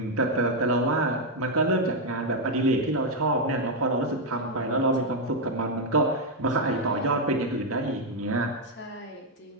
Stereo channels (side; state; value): both; normal; correlation 0.01